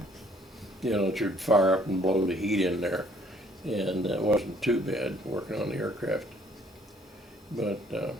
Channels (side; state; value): both; normal; correlation 0.62